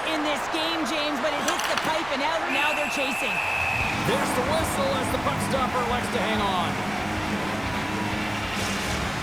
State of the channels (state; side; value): noise; right; rumble, 17 dB below the sound